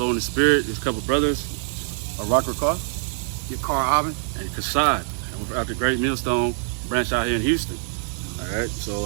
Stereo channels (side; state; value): left; silent; digital silence